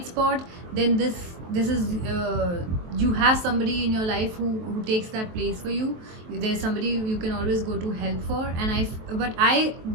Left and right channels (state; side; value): late; left; 23 ms